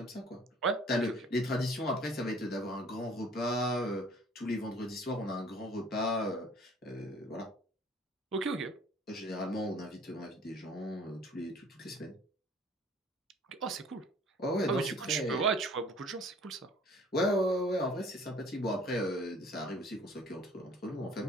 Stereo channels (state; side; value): normal; both; correlation 0.52